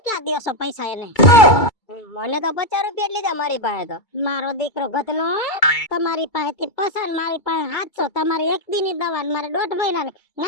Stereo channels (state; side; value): late; right; 2.3 ms